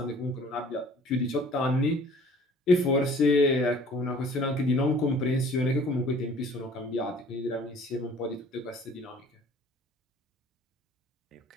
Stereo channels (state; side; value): normal; both; correlation 0.51